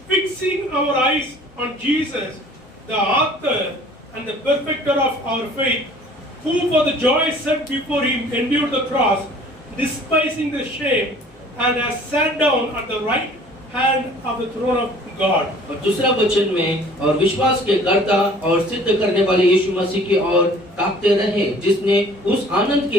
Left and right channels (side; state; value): left; noise; hum, 27 dB below the sound